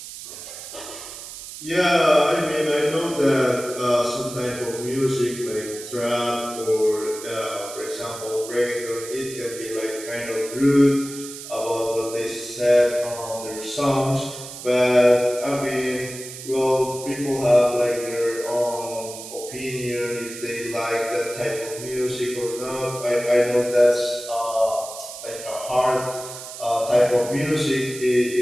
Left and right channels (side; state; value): right; noise; hiss, 12 dB below the sound